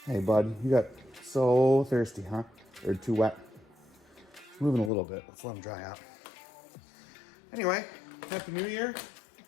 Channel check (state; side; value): drops out; right; at 4.9 s